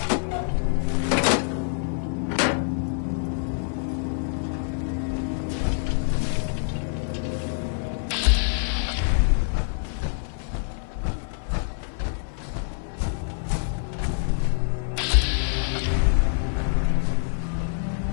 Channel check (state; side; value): silent; right; 59 dB below the other